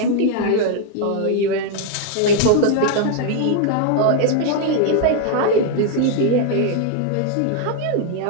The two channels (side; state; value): both; different; correlation 0.00